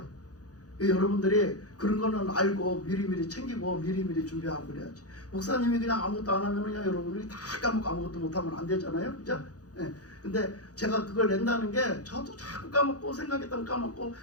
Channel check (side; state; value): right; late; 0.67 ms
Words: 여러분들이 그런 거는 알고 미리미리 챙기고 미리미리 준비하고 그래야지. 목사님이 그냥 아무것도 안 하면 그냥 여러분들이 다 까먹고 아무것도 못하면 안 되잖아요. 그죠? 네. 근데 제가 그걸 낸다는 게 저도 자꾸 까먹고 생각했다면 까먹고